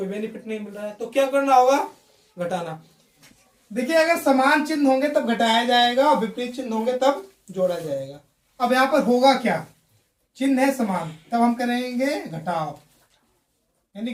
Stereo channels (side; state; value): both; identical; correlation 1.00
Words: बेनिफिट नहीं मिल रहा है, तो क्या करना होगा, घटाना। देखिए अगर समान चिन्ह होंगे तब घटाया जाएगा और विपरीत चिन्ह होंगे तब जोड़ा जाएगा। अब यहां पर होगा क्या, चिन्ह है समान, तब हम करेंगे घटाव, यानी